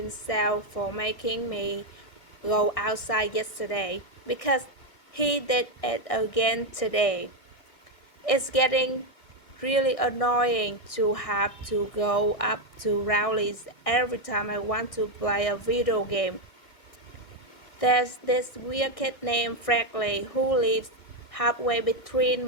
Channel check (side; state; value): right; late; 1.6 ms